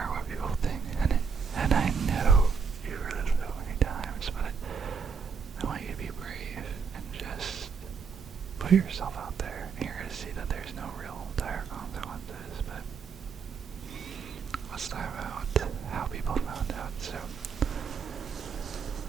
what people think, and I know you've heard it so many times, but I want you to be brave and just put yourself out there. And you're going to see that there's no real dire consequences, but let's talk about how people found out. So,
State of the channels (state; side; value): quieter; left; 5.8 dB